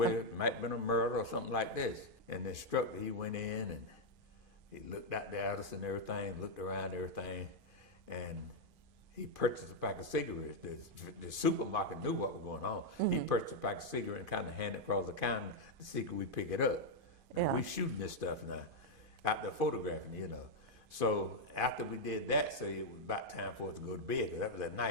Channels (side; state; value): left; late; 2.5 ms